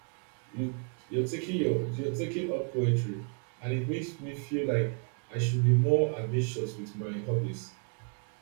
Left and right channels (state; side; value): quieter; left; 39.6 dB